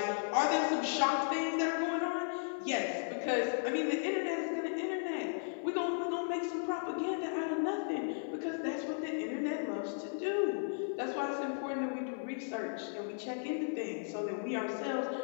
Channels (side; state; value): right; silent; digital silence